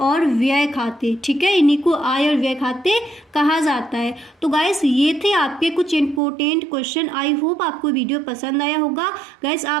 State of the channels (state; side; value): drops out; left; at 6.2 s